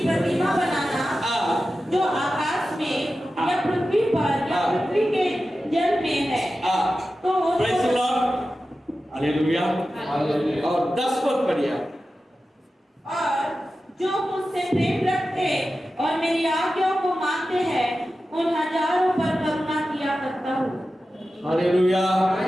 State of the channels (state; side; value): normal; both; correlation 0.93